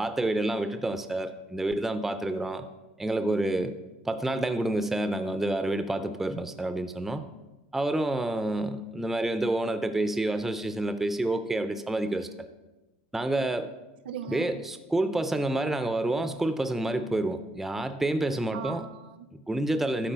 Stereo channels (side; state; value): both; normal; correlation 0.86